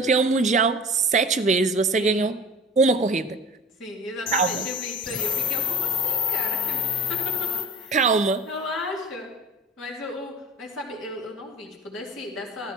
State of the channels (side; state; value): both; normal; correlation 0.40